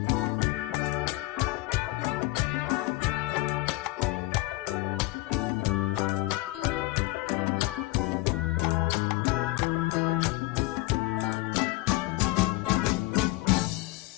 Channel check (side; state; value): right; quieter; 21.0 dB